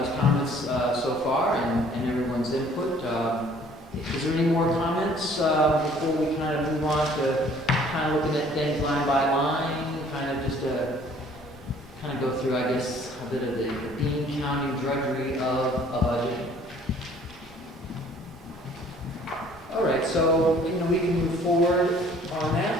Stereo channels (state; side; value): normal; both; correlation 0.56